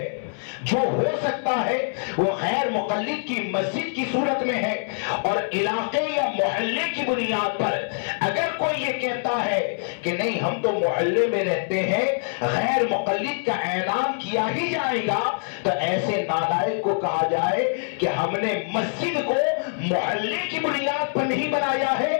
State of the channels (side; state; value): right; silent; 62 dB below the other